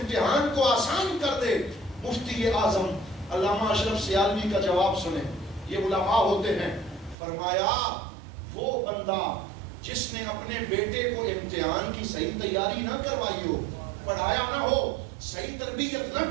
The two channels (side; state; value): left; drops out; at 7.2 s